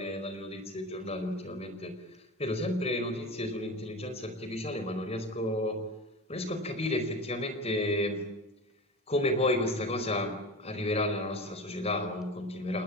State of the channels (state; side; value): normal; both; correlation 0.30